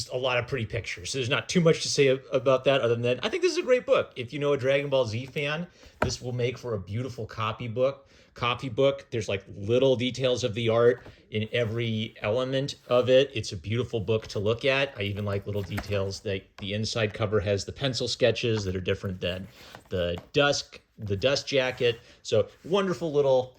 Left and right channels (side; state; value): both; identical; correlation 1.00